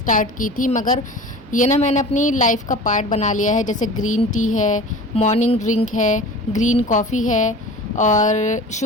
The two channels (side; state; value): both; normal; correlation 0.38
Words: की थी, मगर ये ना मैंने अपनी लाइफ का पार्ट बना लिया है। जैसे ग्रीन टी है, मॉर्निंग ड्रिंक है, ग्रीन कॉफ़ी है, और